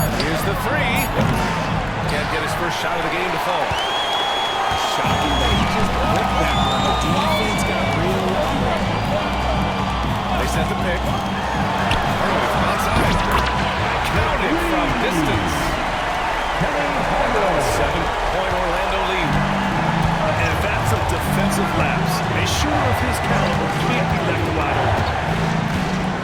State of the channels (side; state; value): both; identical; correlation 1.00